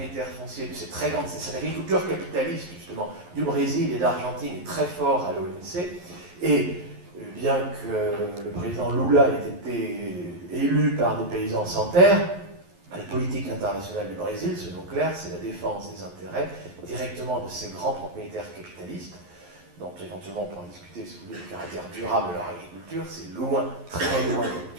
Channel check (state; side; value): late; left; 11 ms